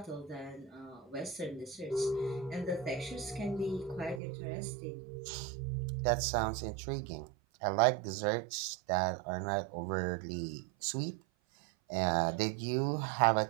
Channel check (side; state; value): left; drops out; at 4.2 s